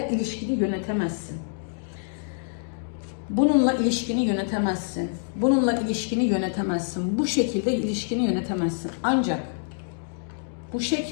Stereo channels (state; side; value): silent; right; digital silence